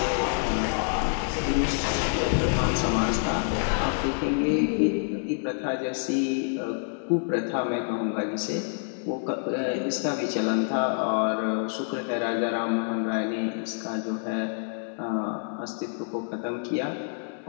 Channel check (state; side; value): silent; right; 60 dB below the other